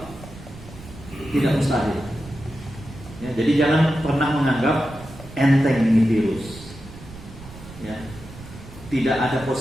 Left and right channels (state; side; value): noise; right; rumble, 16 dB below the sound